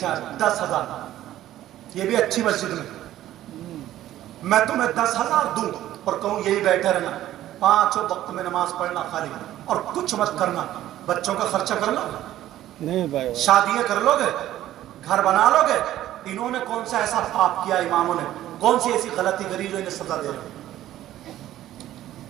10,000، یہ بھی اچھی مسجد میں، میں تمہیں 10,000 دوں اور کہوں یہی بیٹھے رہنا، 5 وقت میں نماز پڑھنا خالی، اور کچھ مت کرنا، بچوں کا خرچہ کر لو، نہیں بھائی، شادیاں کر لو گے، گھر بنا لو گے، انہوں نے کون سا ایسا پاپ کیا، اماموں نے کون سی ایسی غلطی کری جو انہیں سزا دے رہے؟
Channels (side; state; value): left; quieter; 13.5 dB